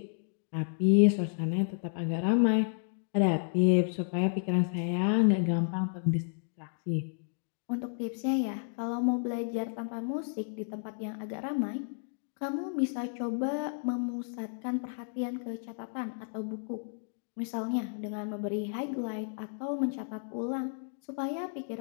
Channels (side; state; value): right; silent; digital silence